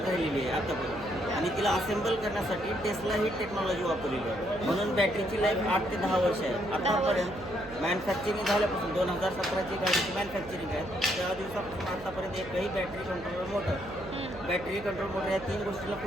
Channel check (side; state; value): right; noise; hum, 17 dB below the sound